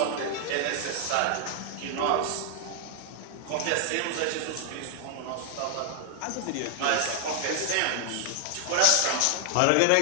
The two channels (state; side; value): different; both; correlation 0.00